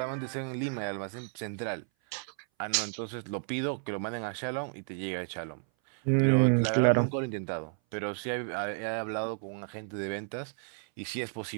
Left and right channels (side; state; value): left; silent; 56 dB below the other